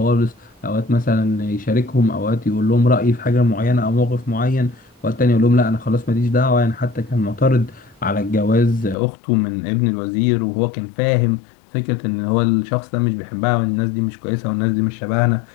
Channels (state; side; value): drops out; right; at 9.0 s